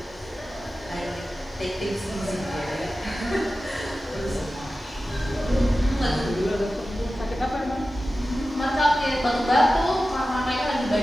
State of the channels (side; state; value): both; normal; correlation 0.94